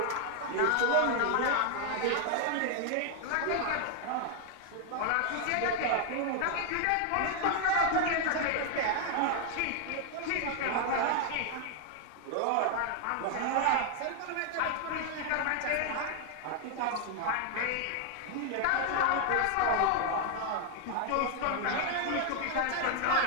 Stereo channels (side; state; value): both; different; correlation 0.00